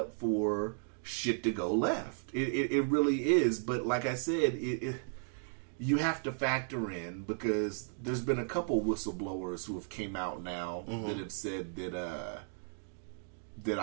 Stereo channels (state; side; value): silent; left; 55 dB below the other